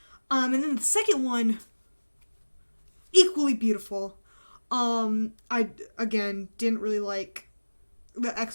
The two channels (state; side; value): inverted; both; correlation -1.00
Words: and then the second one, equally beautiful. I again didn't really like the